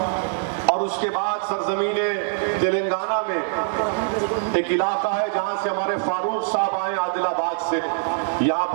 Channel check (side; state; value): left; silent; 63 dB below the other